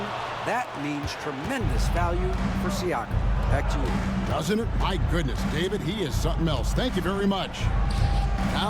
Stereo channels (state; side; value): identical; both; correlation 1.00